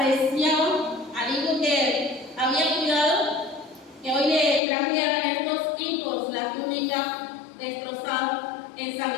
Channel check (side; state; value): right; drops out; at 4.6 s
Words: al hijo que había cuidado, que hoy le trajeran estos hijos la túnica destrozada,